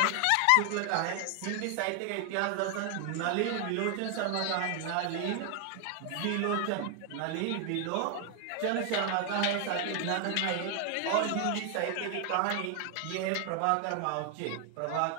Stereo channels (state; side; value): different; both; correlation 0.00